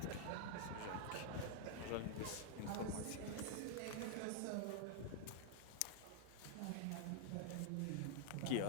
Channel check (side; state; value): both; different; correlation 0.00